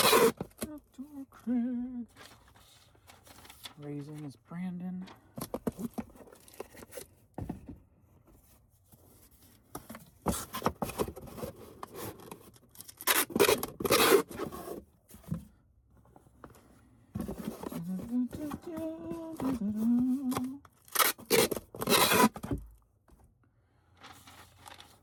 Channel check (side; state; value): both; identical; correlation 1.00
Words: Outdoor Craig. Raising is Brandon.